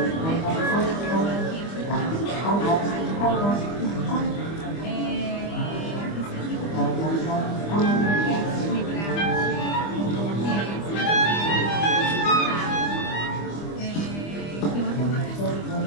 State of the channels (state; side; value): late; right; 25 ms